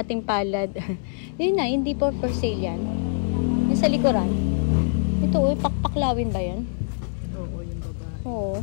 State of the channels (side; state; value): right; silent; 62 dB below the other